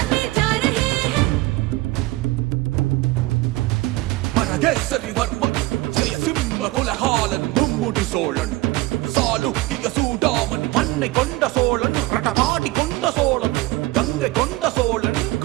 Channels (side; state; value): left; quieter; 19.5 dB